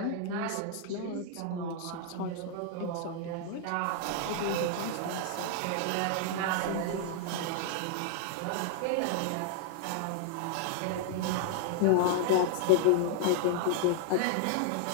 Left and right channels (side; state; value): both; different; correlation -0.01